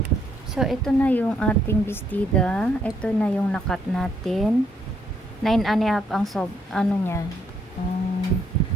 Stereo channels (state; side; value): normal; both; correlation 0.72